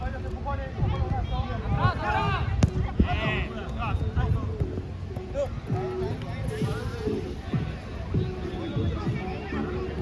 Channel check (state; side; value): identical; both; correlation 1.00